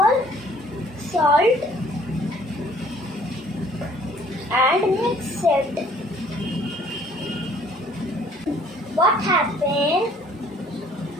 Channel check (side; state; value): both; normal; correlation 0.58